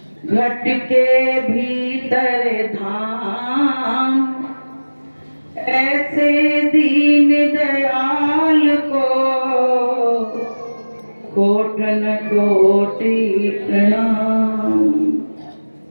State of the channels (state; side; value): inverted; both; correlation -1.00